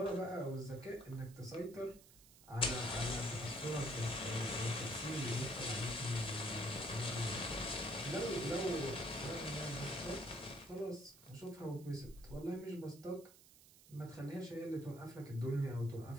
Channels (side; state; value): right; noise; hiss, 22 dB below the sound